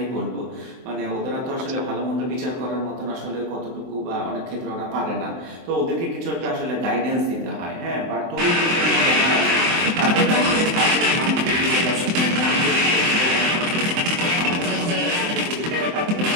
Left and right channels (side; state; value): left; late; 23 ms